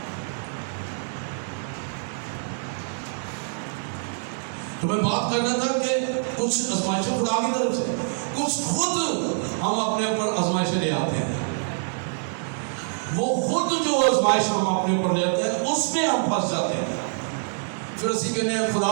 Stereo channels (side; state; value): left; silent; digital silence